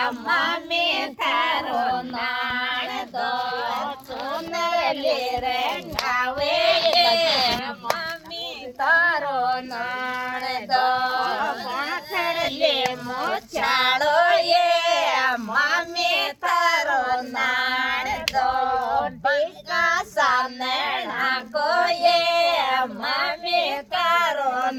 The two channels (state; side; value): identical; both; correlation 1.00